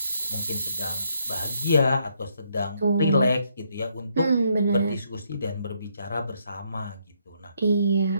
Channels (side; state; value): both; inverted; correlation -0.73